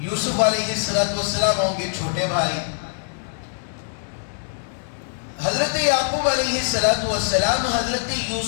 علیہ السلام ہوں گے چھوٹے بھائی. حضرت یعقوب علیہ السلام حضرت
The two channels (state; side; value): silent; right; digital silence